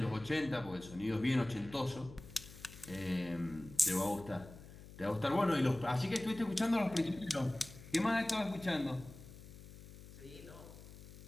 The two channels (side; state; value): left; noise; hum, 16 dB below the sound